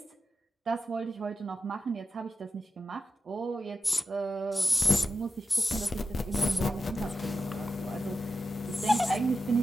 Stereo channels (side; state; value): both; normal; correlation 0.91